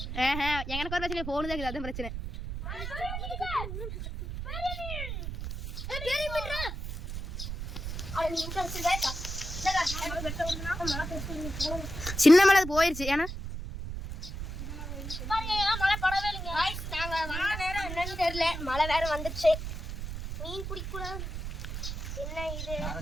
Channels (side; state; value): right; noise; rumble, 6 dB below the sound